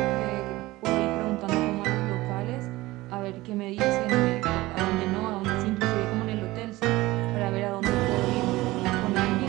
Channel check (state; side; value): quieter; left; 19.0 dB